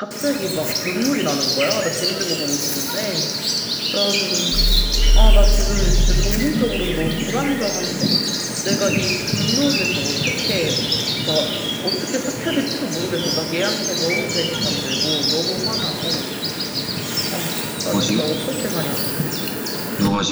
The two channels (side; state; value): both; identical; correlation 1.00